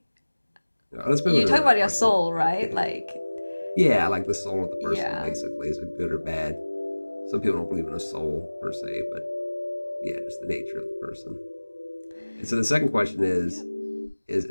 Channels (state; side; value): inverted; both; correlation -1.00